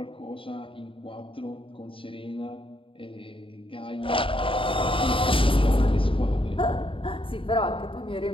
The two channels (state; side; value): late; right; 0.25 ms